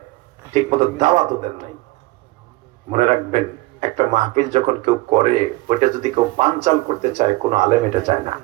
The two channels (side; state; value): left; quieter; 20.5 dB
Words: ঠিক মতো দাওয়াতও দেন নাই। মনে রাখবেন, একটা মাহফিল যখন কেউ করে, ওইটা যদি কেউ বানচাল করতে চায়, কোনো আলেম এটা চায় না।